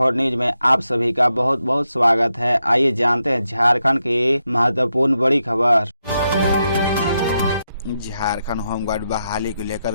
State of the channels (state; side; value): inverted; both; correlation -0.85